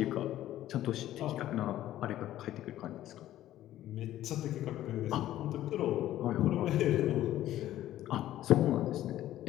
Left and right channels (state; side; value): quieter; right; 13.4 dB